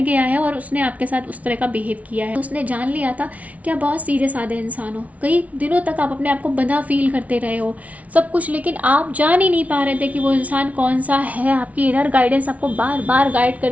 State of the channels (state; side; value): late; left; 0.068 ms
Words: गया है और उसने आपके साथ उस तरह का बिहेव किया है। उसने जान लिया था कि आप बहुत सीधे साधे इंसान हो, कई दिनों तक आप अपने आप को बंधा फील करते रहे हो सब कुछ, लेकिन आप जान ही नहीं पा रहे थे कि वो इंसान कौन सा है। आपकी इनर गाइडेंस आपको बार बार गाइड